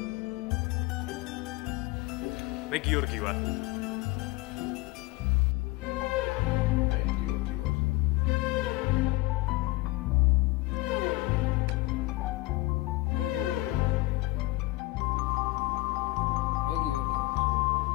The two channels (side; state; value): right; quieter; 21.4 dB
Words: მე გიორგი ვარ. მე გიორგი ვარ. მე გიორგი ვარ. მე გიორგი ვარ.